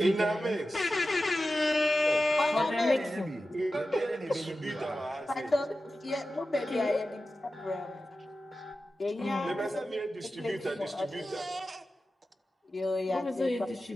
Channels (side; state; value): both; normal; correlation 0.93